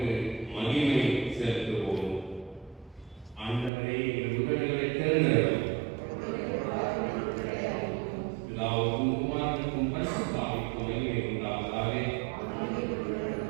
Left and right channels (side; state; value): left; drops out; at 3.7 s